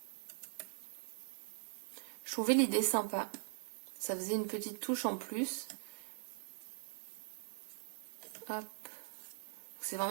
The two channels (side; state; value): left; silent; digital silence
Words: Je trouvais l'idée sympa. Ça faisait une petite touche en plus. Hop. C'est